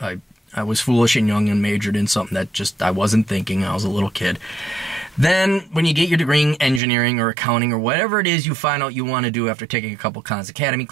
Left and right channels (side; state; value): left; drops out; at 6.8 s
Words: I was foolish and young and majored in something that just I wasn't thinking. I was a little kid. Then, when you get your degree in engineering or accounting or whatever it is you find out you want to do after taking a couple Khan's Academy